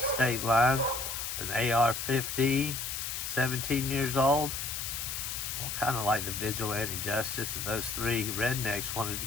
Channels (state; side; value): noise; left; hiss, 4 dB below the sound